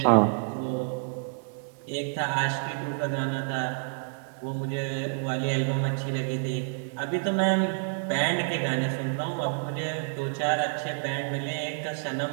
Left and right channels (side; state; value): left; silent; digital silence